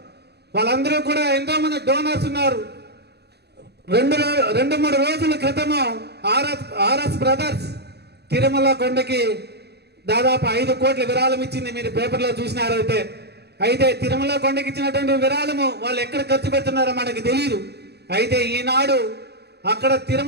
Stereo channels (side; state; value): left; late; 0.48 ms